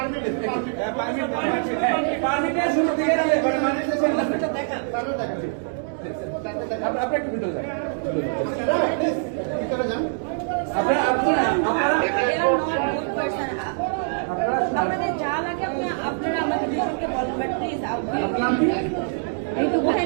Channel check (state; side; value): silent; left; digital silence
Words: আপনাদের যা লাগে আপনারা আমাকে দুজনকে বলুন, বাট প্লিজ এই তো